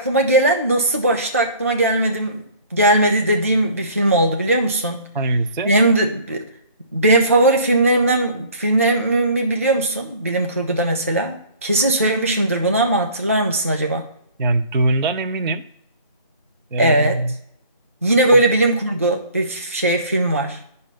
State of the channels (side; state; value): both; inverted; correlation -0.50